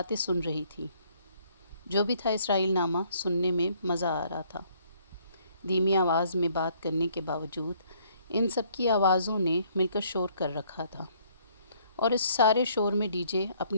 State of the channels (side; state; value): both; inverted; correlation -0.64